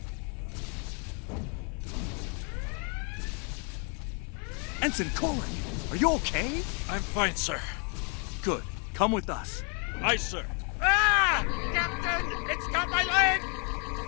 Ensign Korik, are you okay? I'm fine, sir. Good. Come with us. Aye, sir. Ah! Captain! It's got my leg!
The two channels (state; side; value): quieter; right; 36.2 dB